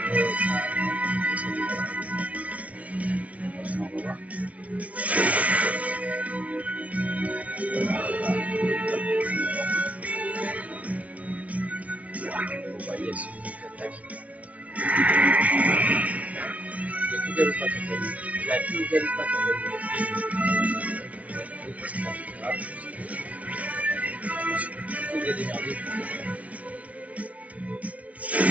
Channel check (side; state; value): left; late; 0.072 ms